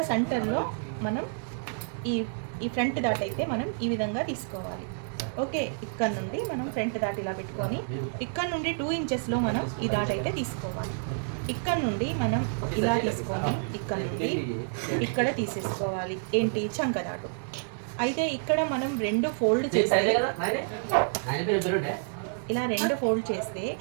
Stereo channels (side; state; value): left; silent; digital silence